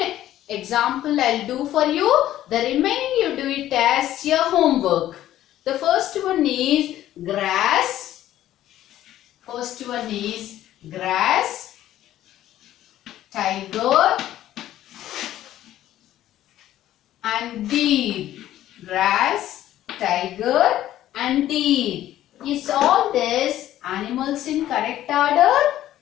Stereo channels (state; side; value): quieter; right; 13.1 dB